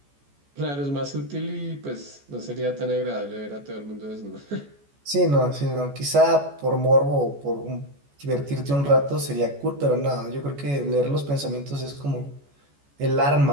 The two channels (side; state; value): left; late; 14 ms